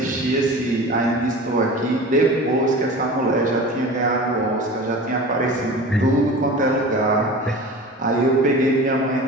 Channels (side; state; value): both; normal; correlation 0.36